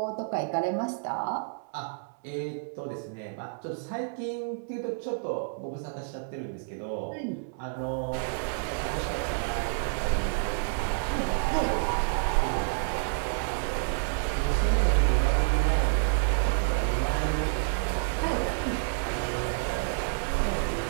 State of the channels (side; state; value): left; silent; 58 dB below the other